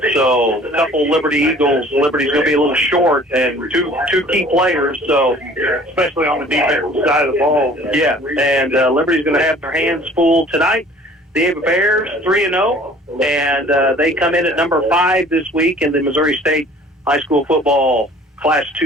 So a couple Liberty Eagles. Liberty's going to be a little short, and two key players. So especially on the defensive side of the ball. Yeah, and Liberty's going to have their hands full tonight. The Ava Bears 3-0, and they come in at number 5 this week in the Missouri State High School Football Class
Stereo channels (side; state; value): both; normal; correlation 0.50